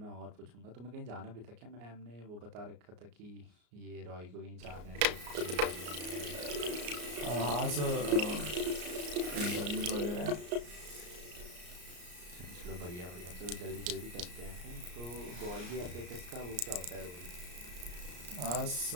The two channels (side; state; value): left; late; 34 ms